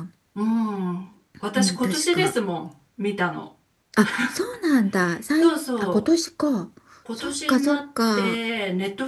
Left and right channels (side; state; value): both; identical; correlation 1.00